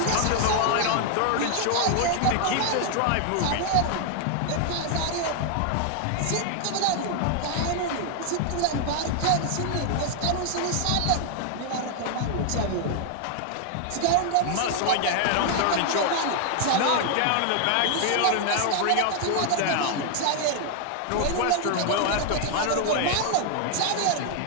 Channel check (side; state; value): both; different; correlation 0.00